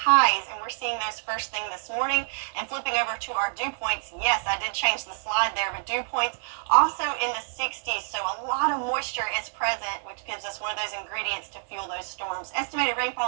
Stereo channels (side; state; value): left; silent; 60 dB below the other